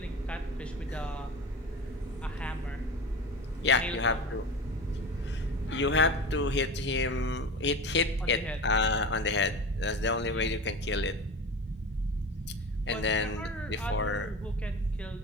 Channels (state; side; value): normal; both; correlation 0.29